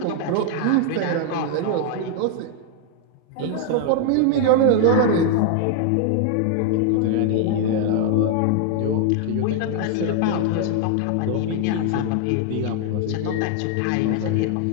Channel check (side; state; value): both; different; correlation 0.00